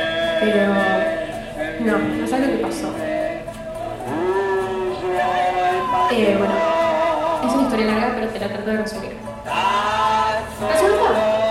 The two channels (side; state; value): both; identical; correlation 1.00